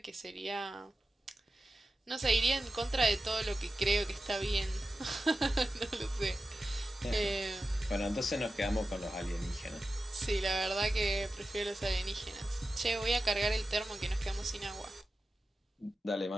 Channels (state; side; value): normal; both; correlation 0.93